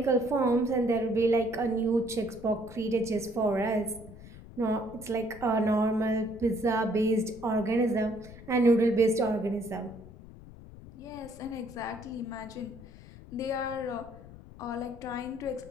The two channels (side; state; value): left; noise; rumble, 17 dB below the sound